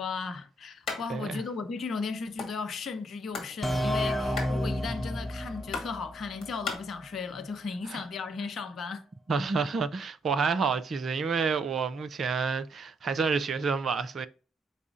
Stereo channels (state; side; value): normal; both; correlation 0.74